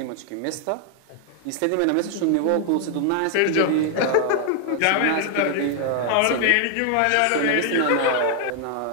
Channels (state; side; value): different; both; correlation 0.00